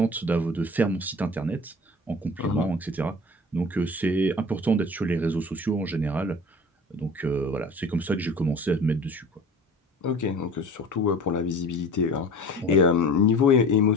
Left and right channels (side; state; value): both; normal; correlation 0.40